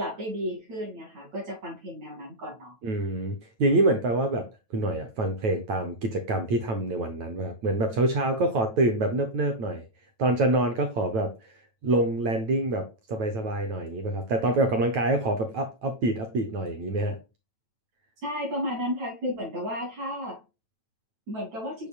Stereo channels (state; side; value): late; left; 9.1 ms